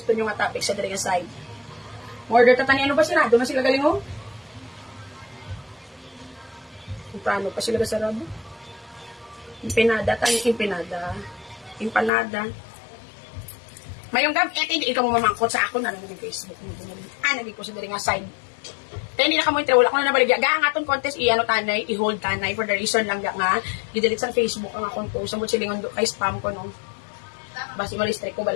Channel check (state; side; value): drops out; right; at 12.1 s